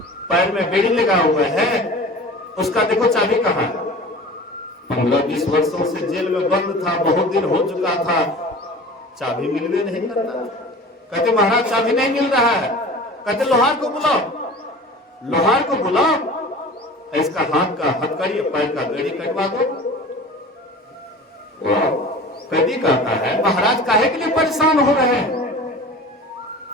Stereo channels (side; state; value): both; normal; correlation 0.39